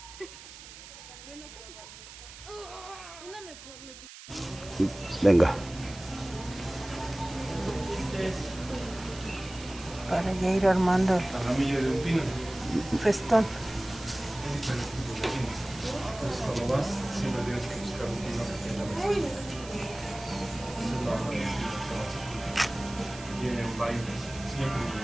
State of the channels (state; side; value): noise; right; hiss, 15 dB below the sound